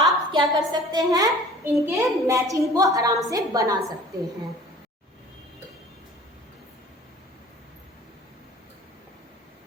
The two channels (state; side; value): normal; both; correlation 0.46